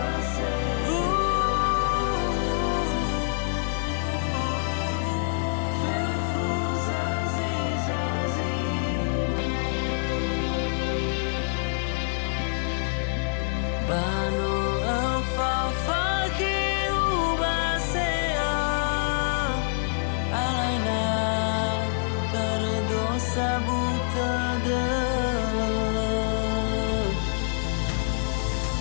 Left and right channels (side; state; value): right; silent; 61 dB below the other